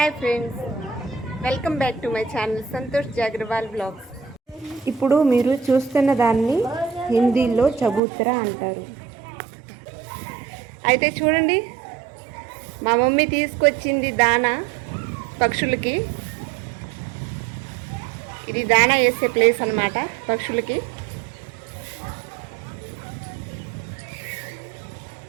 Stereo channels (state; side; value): drops out; left; at 8.0 s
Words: Hi friends, welcome back to my channel Santosh Jagrawal blogs. ఇప్పుడు మీరు చూస్తున్న దాన్ని హిందీలో చబూతరా అంటారు. అయితే చూడండి, మా మమ్మీ తీసుకొచ్చింది దానా పక్షులకి. ఇది దానా వేసే ప్లేస్ అన్నమాట పక్షులకి.